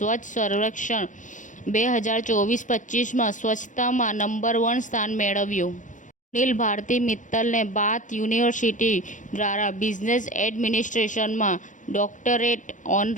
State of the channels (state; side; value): late; right; 0.37 ms